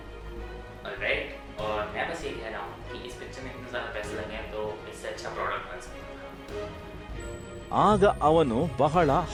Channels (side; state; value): both; identical; correlation 1.00